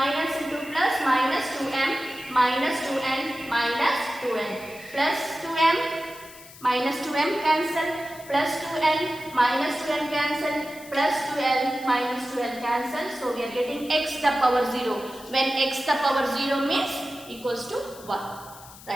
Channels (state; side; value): noise; left; hiss, 19 dB below the sound